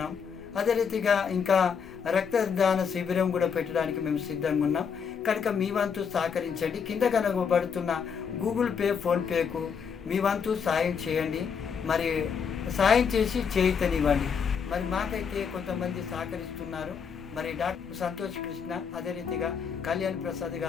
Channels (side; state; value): right; quieter; 6.6 dB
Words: అదే రీతిగా ఇంకా రక్తదాన శిబిరం కూడా పెట్టడానికి మేము సిద్ధంగా ఉన్నాం. కనుక మీ వంతు సహకరించండి. కింద కనబడుతున్న గూగుల్ పే, ఫోన్పేకు మీ వంతు సాయం చేయండి. మరి సాయం చేసి చేయితనివ్వండి. మరి మాకైతే కొంతమంది సహకరిస్తున్నారు. మరి డాక్టర్ సంతోష్ కృష్ణ, అదే రీతిగా కళ్యాణ్ ప్రసాద్